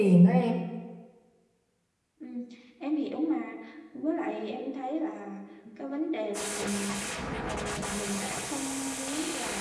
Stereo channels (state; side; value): identical; both; correlation 1.00